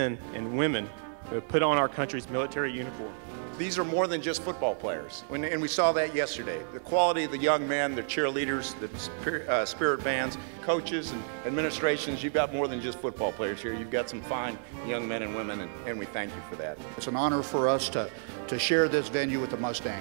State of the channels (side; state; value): left; silent; digital silence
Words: and women who have put on our country's military uniform. These are more than just football players, and we saw that yesterday. The quality of the young men, the cheerleaders, the spirit bands, coaches and administrations, you've got more than just football players here. You've got some fine young men and women, and we thank you for that. It's an honor for us to share this venue with the